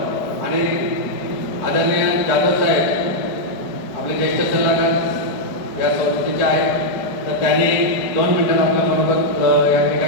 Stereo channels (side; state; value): right; late; 4.9 ms